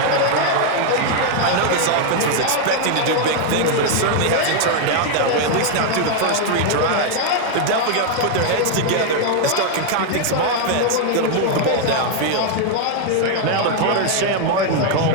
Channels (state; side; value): different; both; correlation 0.00